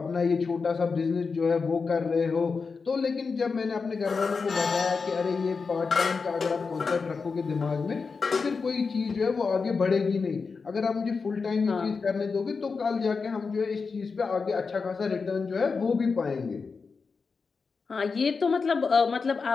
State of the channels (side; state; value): right; quieter; 4.9 dB